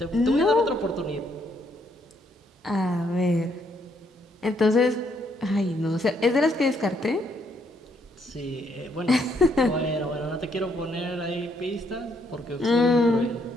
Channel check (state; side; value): normal; both; correlation 0.72